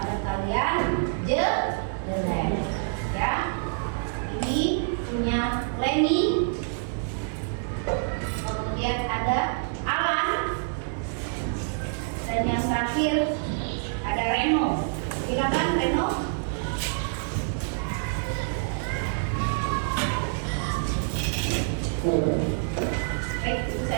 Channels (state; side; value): silent; left; digital silence